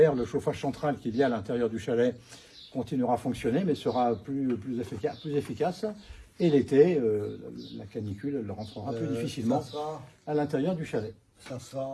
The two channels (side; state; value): both; identical; correlation 1.00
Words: le chauffage central qu'il y a à l'intérieur du chalet continuera à fonctionner, mais sera plus efficace. Et l'été, la canicule, elle rentrera plus difficilement à l'intérieur du chalet. Ça